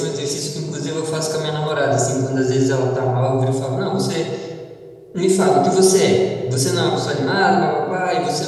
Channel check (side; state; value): both; identical; correlation 1.00